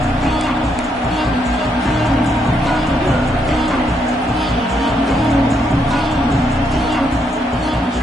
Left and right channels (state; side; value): normal; both; correlation 0.76